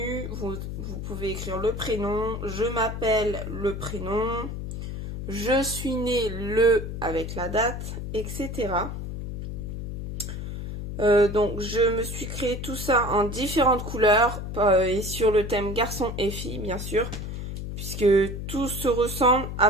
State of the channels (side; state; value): left; noise; hum, 6 dB below the sound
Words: vous pouvez écrire le prénom, je m'appelle le prénom, je suis né le avec la date, etc. Donc je me suis créé tout ça en différentes couleurs et sur le thème garçon et fille bien sûr, puisque tout se ressemble